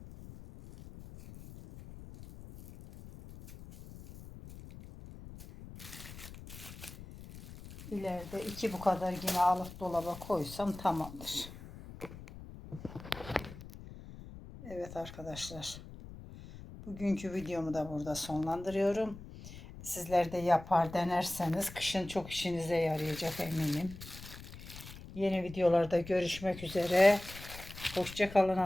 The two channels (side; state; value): left; noise; rumble, 14 dB below the sound